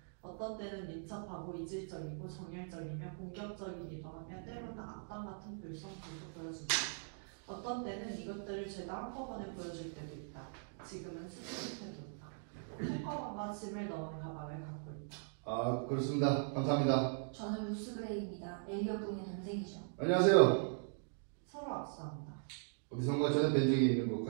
어떤 때는 민첩하고 이질적이고 정열적이며 공격적이기도 하며 때로는 악당 같은 불성품도 보여준다. 어떤 때는 이것들을 죄다 한꺼번에 보여줄 때도 있다. 지금은 수습 태도다. 손가방과 짐을 넣은 가방을 갖고 있다. 아, 그렇습니다. 감사합니다. 저는 루스 그레이입니다. 엘리엇 부인의 동생이죠. 안녕하세요. 서로 악수한다. 어디선가 전에 뵌 적이 있는 것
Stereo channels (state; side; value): silent; left; digital silence